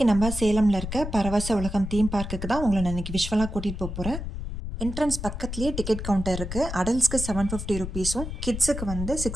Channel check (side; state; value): left; noise; rumble, 6 dB below the sound